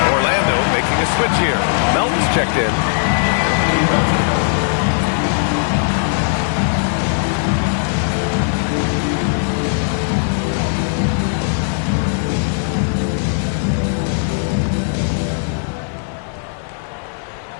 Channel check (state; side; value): silent; right; 67 dB below the other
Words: Orlando making a switch here. Melton's checked in.